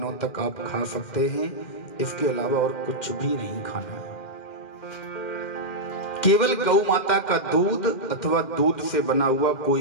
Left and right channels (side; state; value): right; late; 2.1 ms